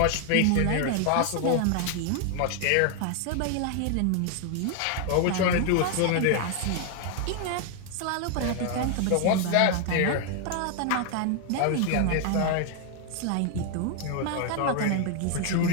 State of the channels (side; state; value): both; different; correlation 0.00